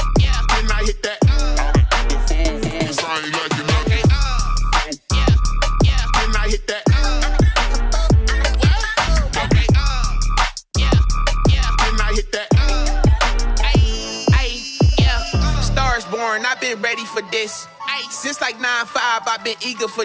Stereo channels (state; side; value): identical; both; correlation 1.00